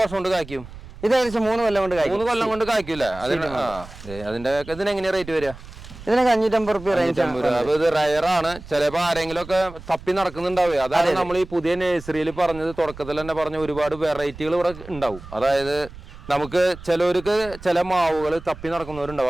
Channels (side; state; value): right; noise; rumble, 16 dB below the sound